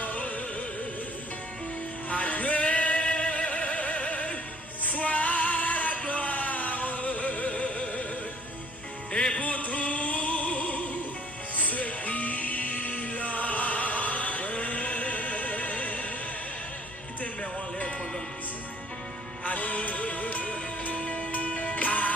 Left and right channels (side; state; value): both; normal; correlation 0.56